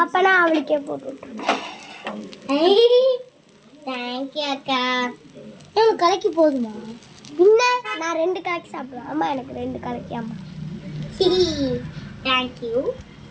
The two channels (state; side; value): identical; both; correlation 1.00